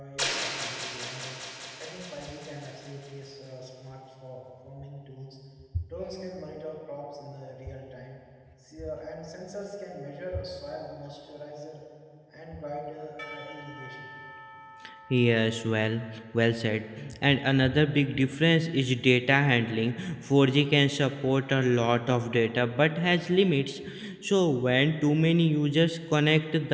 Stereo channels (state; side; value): identical; both; correlation 1.00